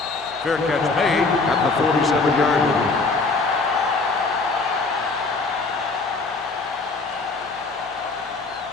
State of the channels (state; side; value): quieter; right; 3.9 dB